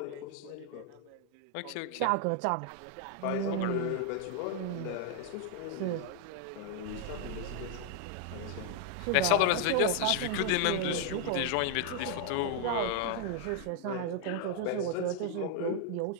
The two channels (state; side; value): different; both; correlation 0.00